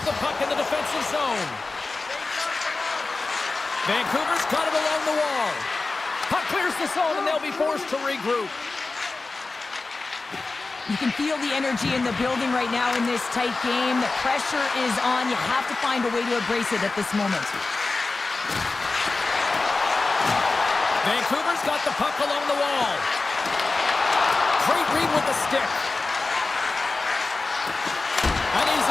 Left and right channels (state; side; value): quieter; right; 3.6 dB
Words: the puck in the defensive zone. Vancouver's got it along the wall. Puck clears the zone and they'll be forced to regroup. You can feel the energy in the building right now in this tight game. The pressure is on. You have to find a way to embrace it at this moment. Vancouver's got the puck along the wall. Great read with the stick. An